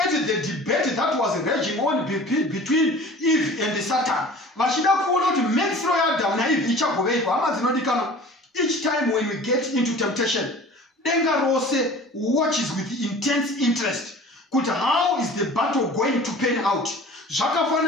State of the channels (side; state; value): both; normal; correlation 0.43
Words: the debate that was raging on between Eve and Satan. Each time when we get into temptation, Denga Rose watches with intense interest. How is the battle going to pan out?